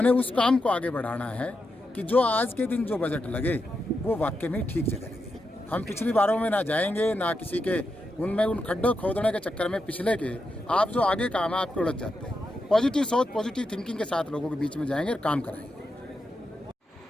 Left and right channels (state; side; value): normal; both; correlation 0.86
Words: उस काम को आगे बढ़ाना है कि जो आज के दिन जो बजट लगे वो वाकई में ठीक जगह लगे। हम पिछली बारों में ना जाएंगे, ना किसी के उनमें उन खड्डों खोदने के चक्कर में पिछले के आप जो आगे काम है आपके उलझ जाते हैं। पॉजिटिव सोच, पॉजिटिव थिंकिंग के साथ लोगों के बीच में जाएंगे और काम कराएंगे।